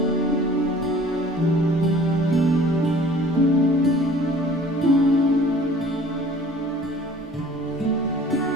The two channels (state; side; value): normal; both; correlation 0.49